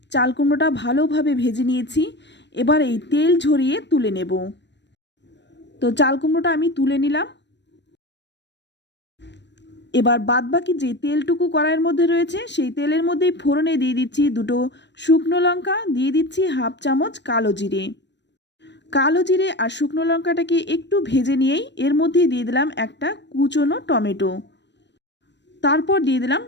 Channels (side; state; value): right; late; 0.51 ms